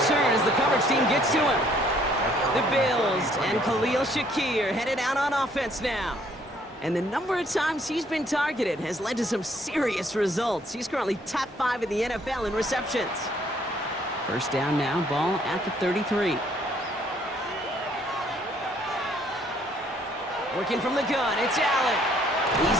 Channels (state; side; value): normal; both; correlation 0.64